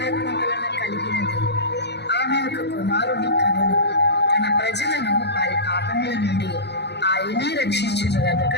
వలన కలిగినది. ఆమె ఒక కుమారుని కనును. తన ప్రజలను వారి పాపముల నుండి ఆయనే రక్షించును గనుక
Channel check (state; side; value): late; right; 0.49 ms